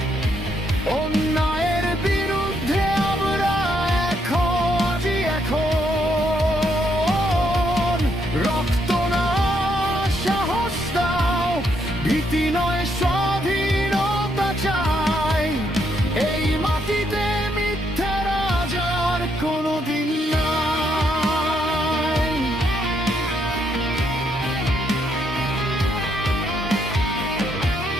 অন্যায়ের বিরুদ্ধে আমরা আজি এখন। রক্ত না, সাহস দাও, ভীতি নয়, স্বাধীনতা চাই। এই মাটিতে মিথ্যা রাজার কোনোদিন নাই।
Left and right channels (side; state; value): both; normal; correlation 0.75